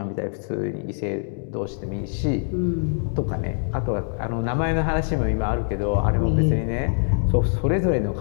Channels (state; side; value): silent; right; digital silence